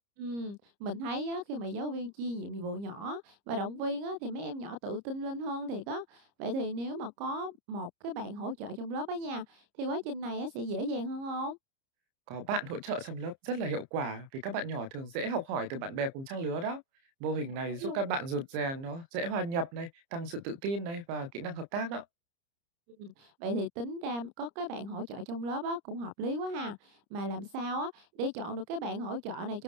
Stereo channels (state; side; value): late; left; 30 ms